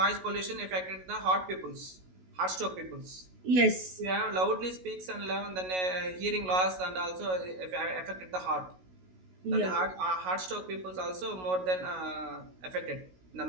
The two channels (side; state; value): left; late; 16 ms